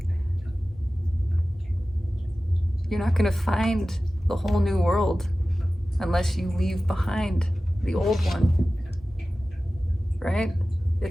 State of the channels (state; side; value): normal; both; correlation 0.96